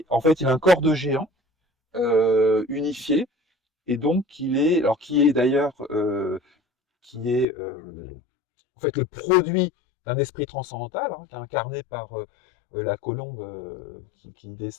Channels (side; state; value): right; drops out; at 7.5 s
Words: en fait, il a un corps de géant, unifié, et donc qui est d'ailleurs, en fait le produit d'un esprit transcendantal, hein, qui est incarné par la colombe qui